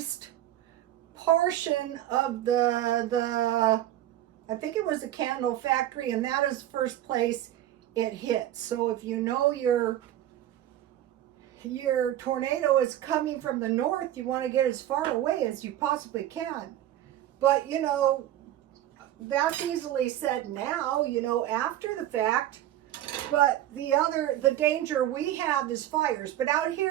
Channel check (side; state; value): left; quieter; 12.8 dB